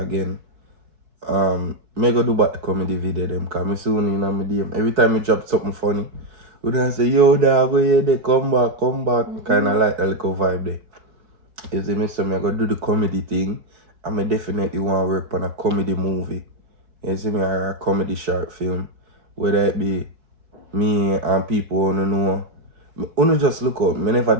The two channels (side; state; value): left; late; 4.6 ms